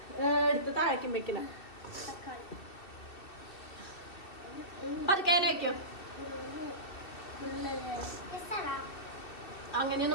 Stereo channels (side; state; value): right; late; 2.7 ms